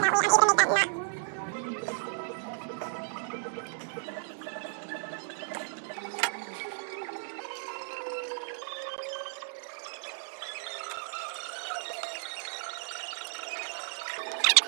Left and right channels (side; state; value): left; silent; 56 dB below the other